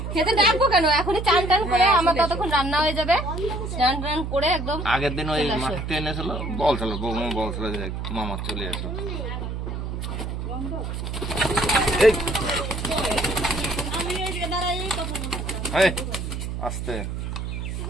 খেতে ডাকবো কেন, এখনই চান টান করে আমার ততক্ষণ রান্না হয়ে যাবে। চান টান করে একদম আগের দিন ওই মাঠে এনেছিল, বলছিল বৌমা বলছিল যে মামা চলে আসো। আস্তে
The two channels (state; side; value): noise; right; hum, 4 dB below the sound